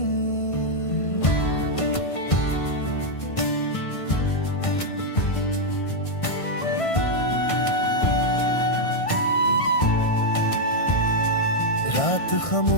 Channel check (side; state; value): right; late; 1.5 ms